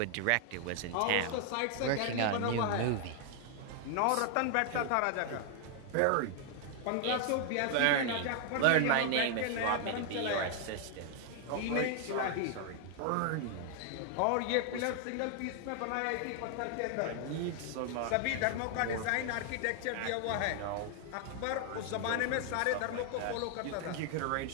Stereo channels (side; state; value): both; different; correlation 0.00